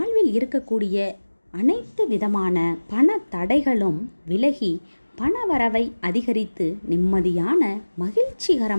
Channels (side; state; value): both; inverted; correlation -1.00